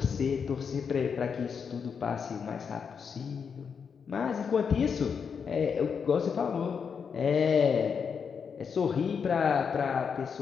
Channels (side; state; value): right; quieter; 6.4 dB